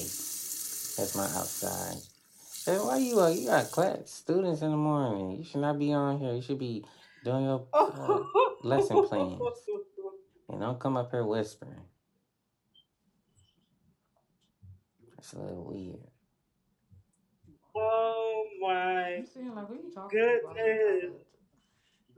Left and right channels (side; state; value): both; identical; correlation 1.00